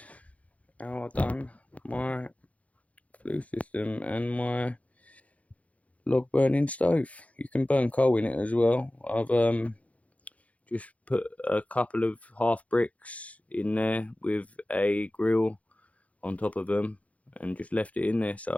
how I've done my flue system and my log burning stove. You can burn coal in it as well. I've just put a couple of half bricks in there with a grill on top of them and just left it in there so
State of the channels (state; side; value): late; right; 0.067 ms